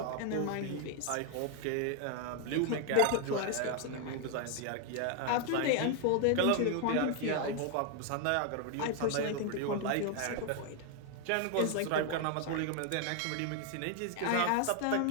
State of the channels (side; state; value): both; different; correlation 0.00